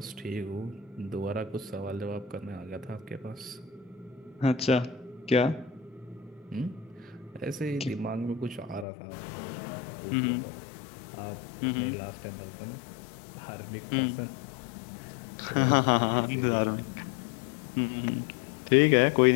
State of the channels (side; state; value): right; drops out; at 8.8 s